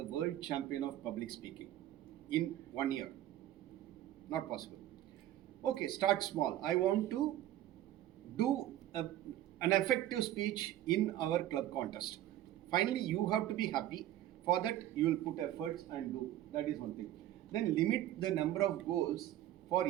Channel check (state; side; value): quieter; left; 13.2 dB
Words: world champion of public speaking in 1 year. Not possible. Okay, start small. I want to do an effective speech in our club contest. Finally, you have to be happy. For that, you will put efforts and do. That is one thing. Then limit the number of goals for